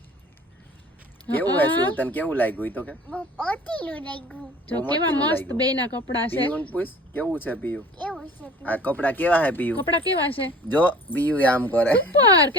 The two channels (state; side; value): normal; both; correlation 0.45